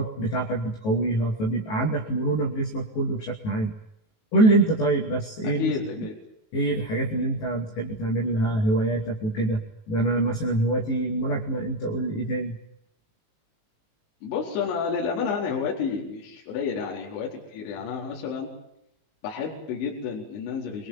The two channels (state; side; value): late; right; 19 ms